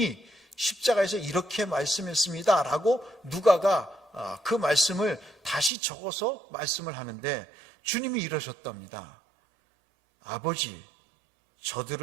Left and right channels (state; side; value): drops out; left; at 5.7 s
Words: 십자가에서 이렇게 말씀했습니다 라고 누가가 그 말씀을 다시 적어서 말씀을 하는데 주님이 이러셨답니다. 아버지,